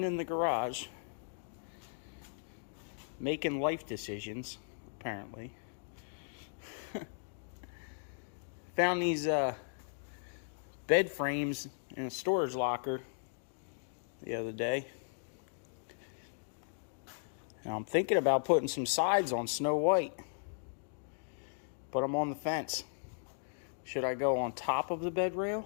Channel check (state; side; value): silent; right; digital silence